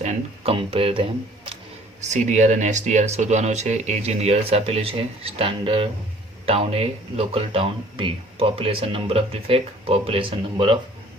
and compare them. CDR અને SDR શોધવાનો છે. એજ ઇન યર્સ આપેલું છે. Standard town A, local town B, population number of defect, population number of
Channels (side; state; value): both; normal; correlation 0.54